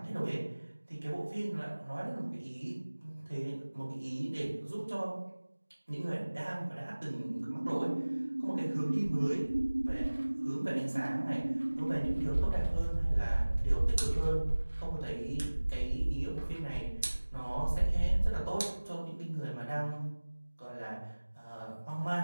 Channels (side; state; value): both; inverted; correlation -1.00